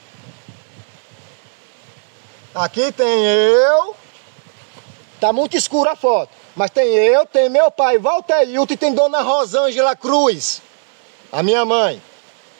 Aqui tem eu, tá muito escura a foto, mas tem eu, tem meu pai Walter Hilton e tem Dona Rosângela Cruz, a minha mãe.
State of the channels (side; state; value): left; silent; digital silence